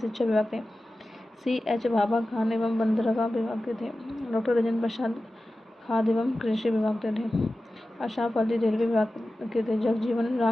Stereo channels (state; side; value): normal; both; correlation 0.95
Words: विभाग थे CH भाभा खान एवं बंदरगाह विभाग के थे डॉक्टर राजेंद्र प्रसाद, खाद्य एवं कृषि विभाग के थे अशराफ अली, रेलवे विभाग के थे जगजीवन